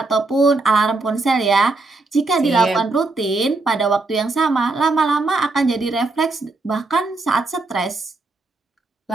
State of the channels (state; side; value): quieter; left; 3.4 dB